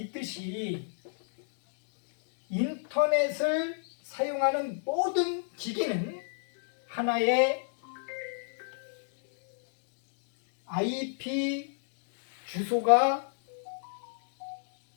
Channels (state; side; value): silent; right; digital silence